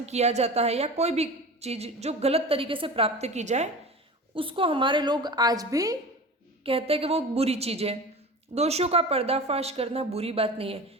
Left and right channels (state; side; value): normal; both; correlation 0.34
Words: किया जाता है या कोई भी चीज जो गलत तरीके से प्राप्त की जाए उसको हमारे लोग आज भी कहते हैं कि वो बुरी चीज है। दोषों का पर्दाफाश करना बुरी बात नहीं है,